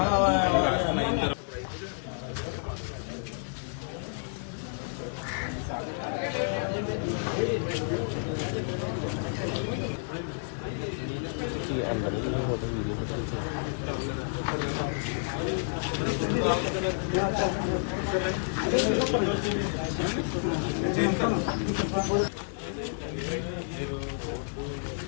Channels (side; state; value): right; silent; digital silence